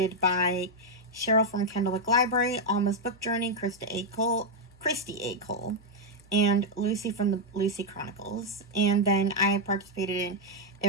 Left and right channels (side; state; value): both; normal; correlation -0.01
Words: by Cheryl from Kendallwick Library, Alma's Book Journey, Christy A. Cole, and Lucy from the Lucy Chronicles. And then I participated in